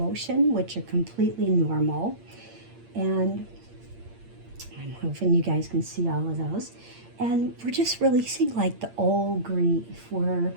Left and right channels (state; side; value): late; left; 8.7 ms